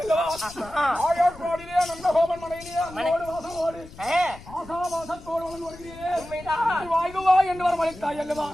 ஆயர்வாடியிலே நந்தகோபன் மனையிலே வாசமோடு ஆசாவாசத்தோடு வருகிறேன் வாயுவாய் என்று வரவழைத்தாய் அல்லவா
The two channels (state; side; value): noise; left; rumble, 17 dB below the sound